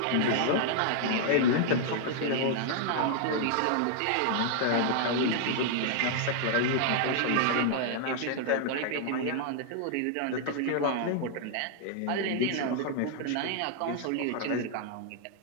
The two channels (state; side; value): different; both; correlation 0.00